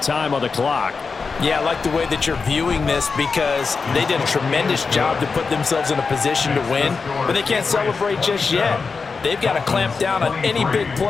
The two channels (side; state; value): right; quieter; 4.8 dB